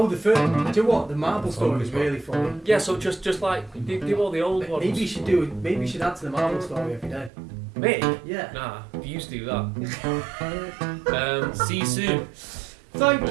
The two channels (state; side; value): drops out; left; at 7.3 s